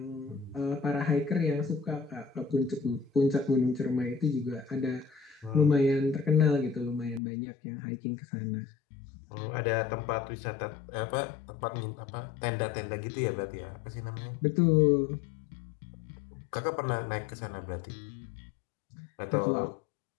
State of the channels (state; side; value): drops out; right; at 7.2 s